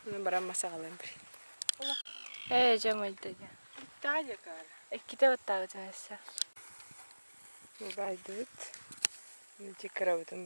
Ben bana masa kalayım bir. Cemil'de. Daha yakar. İki de ottağı cahilse. Baydıt. Cikara bütün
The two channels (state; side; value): inverted; both; correlation -1.00